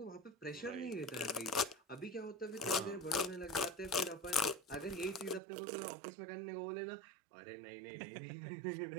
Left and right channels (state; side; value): drops out; left; at 5.4 s